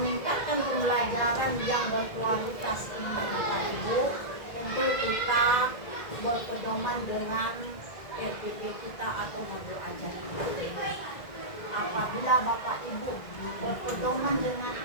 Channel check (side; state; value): right; late; 2.0 ms